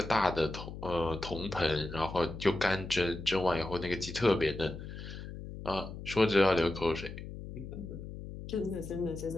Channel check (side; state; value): left; noise; hum, 10 dB below the sound